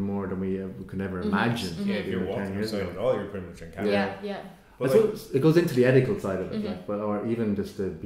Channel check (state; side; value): identical; both; correlation 1.00